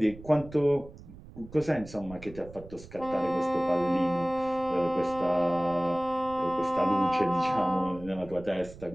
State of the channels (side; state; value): right; noise; rumble, 18 dB below the sound